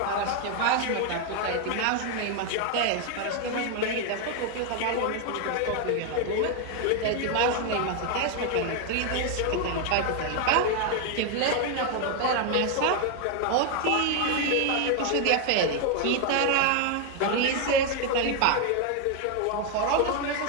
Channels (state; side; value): different; both; correlation 0.01